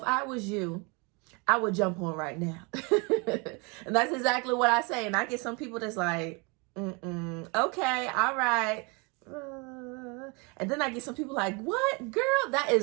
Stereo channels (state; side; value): quieter; left; 30.4 dB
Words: I was you, I would jump on right now. And that's exactly what I say. And I get some people that's like, okay, all right. And then I get some people like, what, girl, that